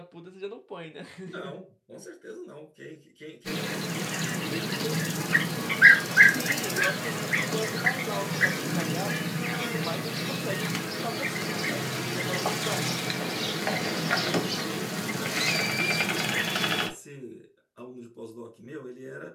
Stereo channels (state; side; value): identical; both; correlation 1.00